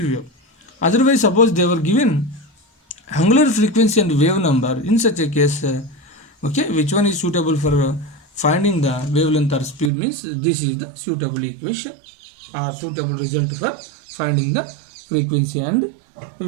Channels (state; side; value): drops out; left; at 9.9 s